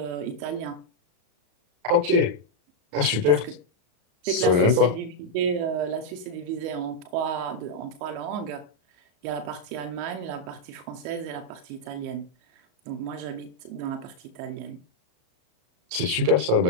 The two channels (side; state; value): left; late; 34 ms